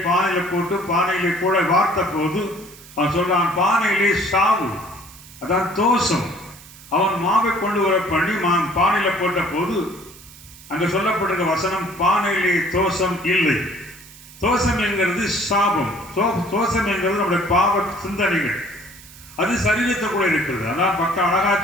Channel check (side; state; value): right; noise; hiss, 20 dB below the sound